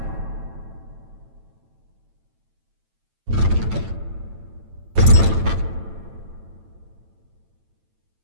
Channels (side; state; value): left; late; 9.0 ms